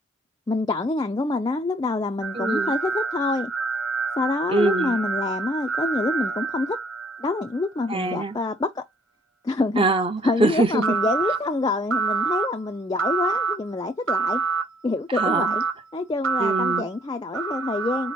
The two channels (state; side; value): normal; both; correlation 0.62